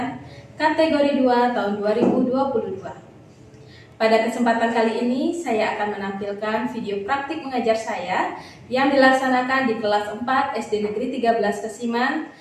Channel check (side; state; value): both; identical; correlation 1.00